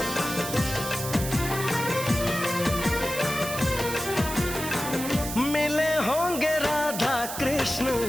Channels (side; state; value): right; noise; hiss, 7 dB below the sound